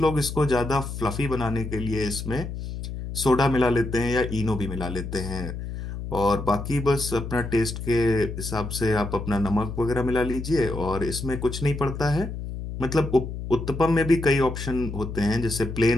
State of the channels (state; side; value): noise; left; hum, 7 dB below the sound